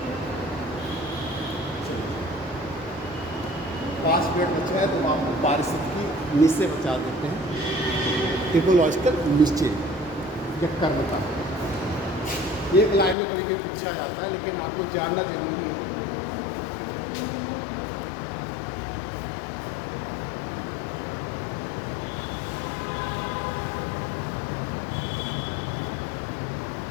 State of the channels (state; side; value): drops out; right; at 13.2 s